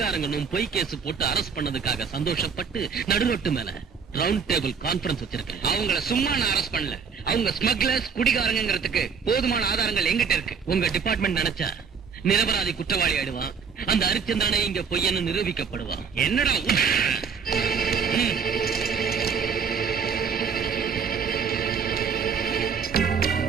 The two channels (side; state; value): left; quieter; 6.2 dB